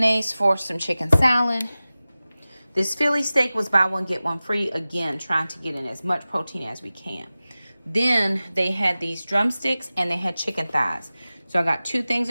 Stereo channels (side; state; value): both; inverted; correlation -0.97